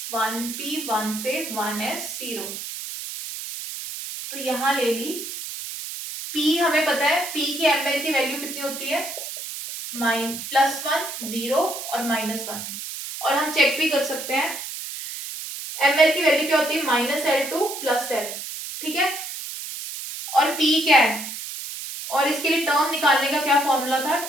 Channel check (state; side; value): noise; right; hiss, 8 dB below the sound